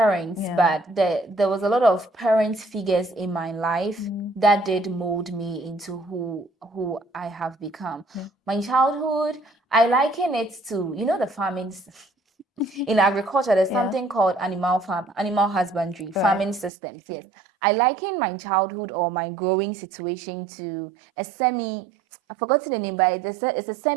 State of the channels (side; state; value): left; drops out; at 16.7 s